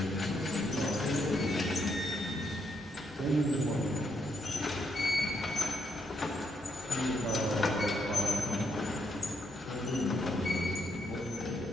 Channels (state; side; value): normal; both; correlation 0.77